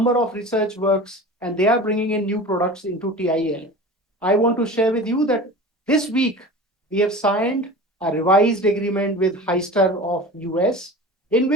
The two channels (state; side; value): normal; both; correlation 0.35